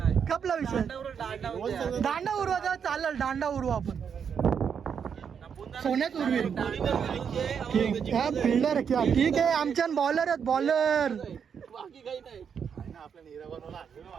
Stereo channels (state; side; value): quieter; left; 7.2 dB